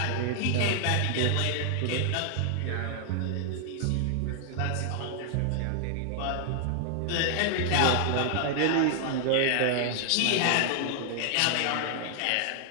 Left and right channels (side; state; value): both; different; correlation 0.00